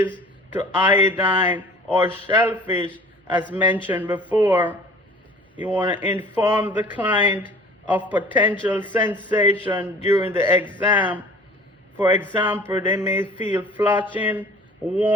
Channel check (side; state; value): both; normal; correlation 0.46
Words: to iodine or shellfish as mentioned before. You want to inform the client of potential sensation during the exam. For example, they may feel flushing,